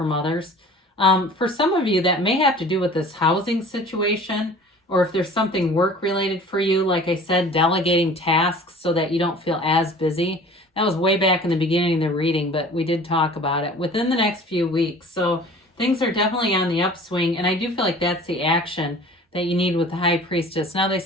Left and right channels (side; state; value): both; normal; correlation 0.45